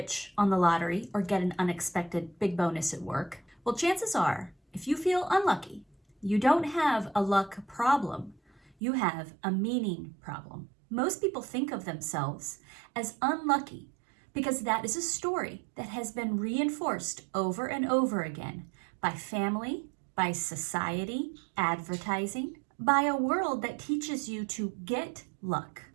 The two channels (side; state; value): left; drops out; at 8.8 s